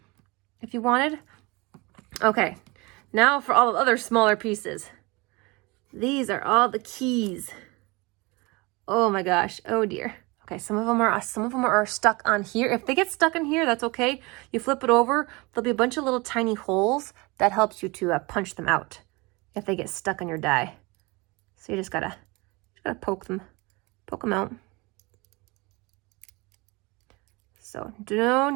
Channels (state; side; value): quieter; left; 25.4 dB